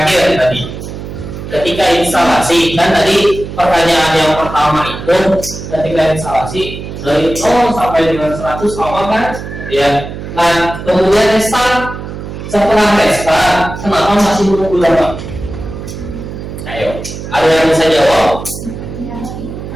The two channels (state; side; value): noise; right; hum, 9 dB below the sound